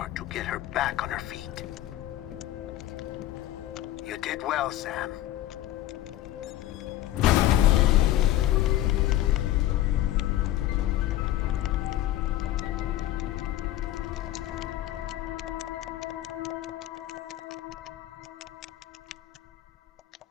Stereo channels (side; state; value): right; quieter; 14.0 dB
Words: to get her back on her feet. You did well, Sam.